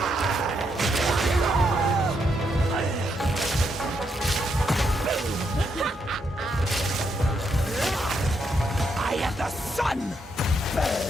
I am the sun!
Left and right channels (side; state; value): both; normal; correlation 0.78